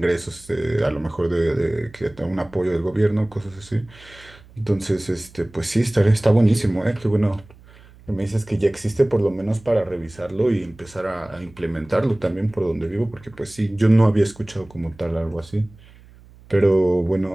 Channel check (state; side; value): noise; right; hum, 24 dB below the sound